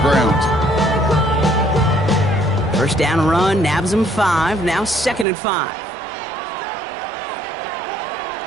First down run, nabs him 5. Now 2nd and 5.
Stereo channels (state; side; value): drops out; left; at 5.2 s